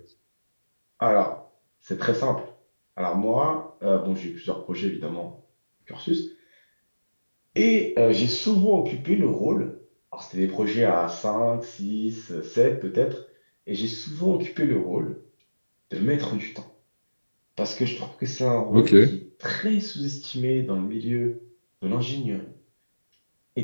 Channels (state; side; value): inverted; both; correlation -1.00